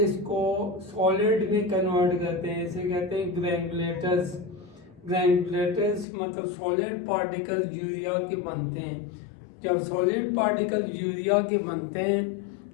इसको सॉलिड में कन्वर्ट करते हैं। इसे कहते हैं ग्रैनुलेटर्स। ग्रैनुलेटर्स मतलब सॉलिड पार्टिकल यूरिया के बनते हैं। जब सॉलिड पार्टिकल यूरिया के बनते हैं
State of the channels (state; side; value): drops out; right; at 6.1 s